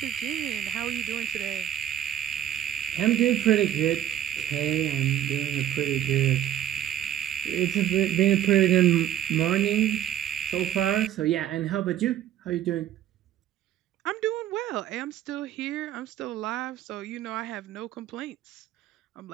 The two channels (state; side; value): quieter; left; 11.0 dB